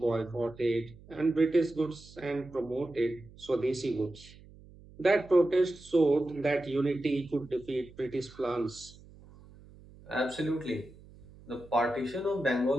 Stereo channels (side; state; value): right; noise; hum, 22 dB below the sound